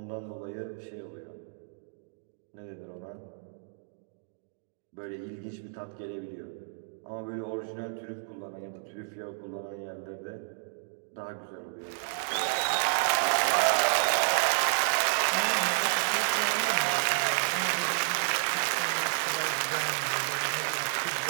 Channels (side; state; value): left; silent; digital silence